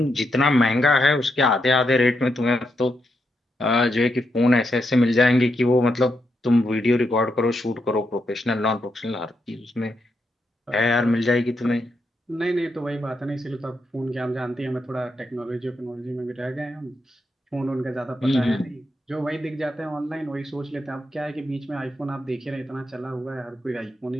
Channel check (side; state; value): both; normal; correlation 0.82